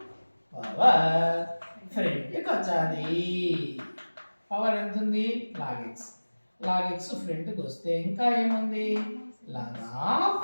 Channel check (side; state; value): both; inverted; correlation -1.00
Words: పవర్ ఫ్రంట్కి వచ్చాది. పవర్ ఎంత ఉంది, లాగ్ ఎక్స్. లాగ్ ఎక్స్ ఫ్రంట్కి వస్తే ఇంకా ఏముంది, లాగ్ ఆఫ్